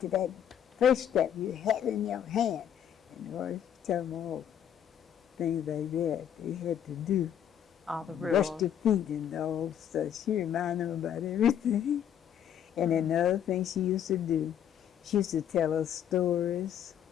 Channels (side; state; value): right; quieter; 9.5 dB